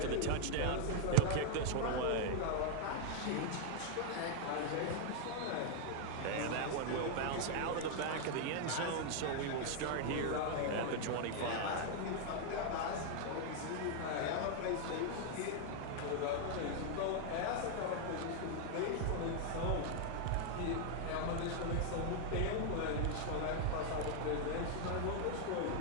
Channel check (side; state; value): both; different; correlation 0.00